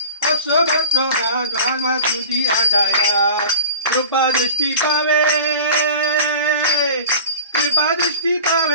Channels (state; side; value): inverted; both; correlation -0.37